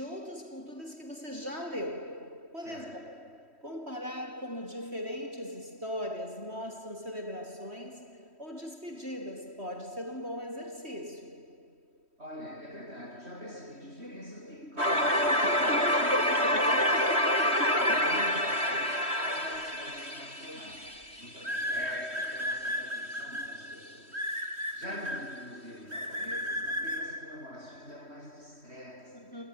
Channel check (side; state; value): left; late; 3.1 ms